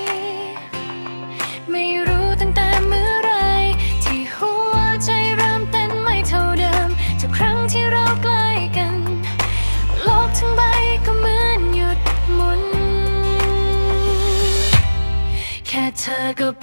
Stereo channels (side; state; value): both; inverted; correlation -1.00